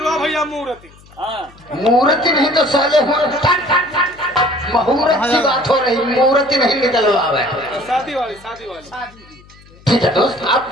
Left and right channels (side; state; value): left; noise; hum, 25 dB below the sound